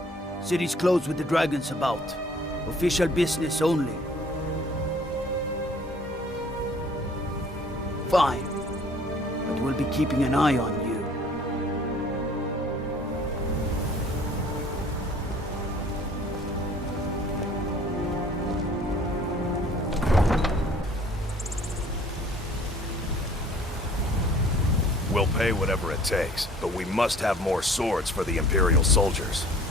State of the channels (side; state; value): both; normal; correlation 0.53